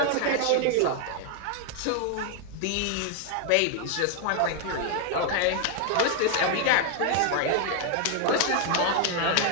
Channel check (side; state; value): both; different; correlation 0.00